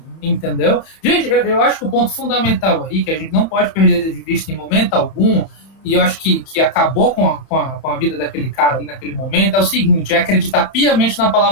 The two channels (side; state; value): right; late; 31 ms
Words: entendeu? Gente, eu acho que o ponto fundamental aí, que a gente não pode perder de vista em momento algum, e eu acho que acabou com a vida daquele cara ali naquele momento, é o seguinte, é acreditar piamente na